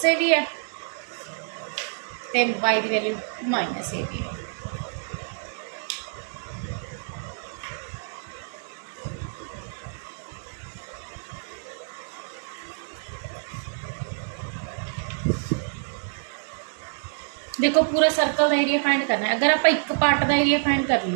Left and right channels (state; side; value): silent; left; digital silence